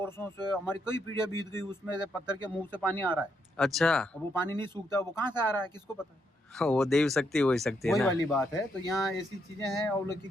से। हमारी कई पीढ़ियां बीत गई, उसमें से पत्थर के मुंह से पानी आ रहा है। अच्छा, अब वो पानी नहीं सूखता, वो कहाँ से आ रहा है किसको पता है? वो देव शक्ति हो सकती है वही ना। वाली बात है। तो यहाँ ऐसी चीजें हैं और लोग की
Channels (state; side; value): normal; both; correlation 0.77